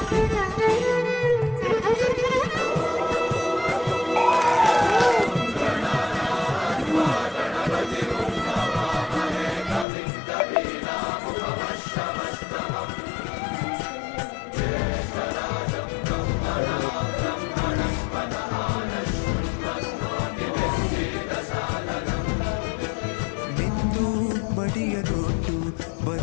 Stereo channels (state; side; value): drops out; right; at 9.9 s